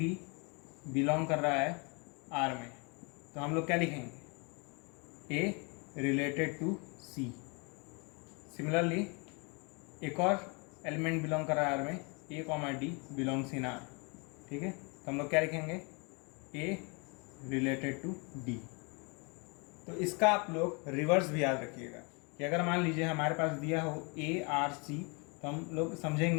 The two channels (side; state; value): right; quieter; 32.3 dB